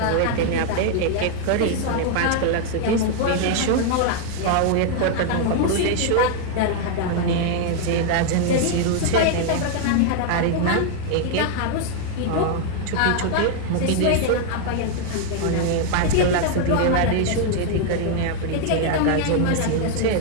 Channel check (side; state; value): both; different; correlation 0.00